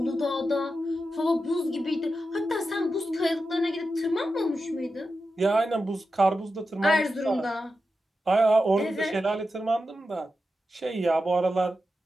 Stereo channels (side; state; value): both; normal; correlation 0.90